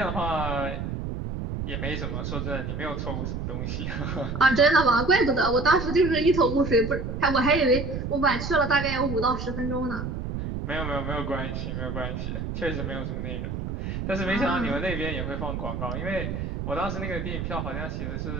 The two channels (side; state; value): right; noise; rumble, 4 dB below the sound